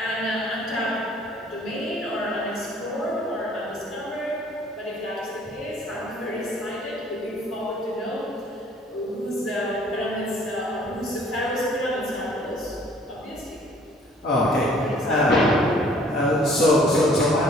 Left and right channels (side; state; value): both; normal; correlation 0.56